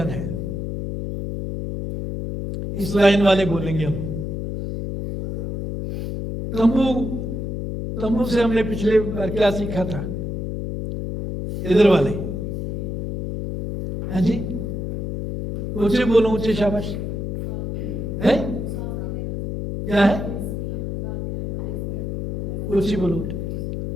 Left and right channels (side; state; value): left; noise; hum, 4 dB below the sound